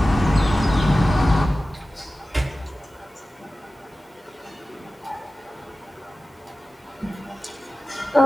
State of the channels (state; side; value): normal; both; correlation 0.95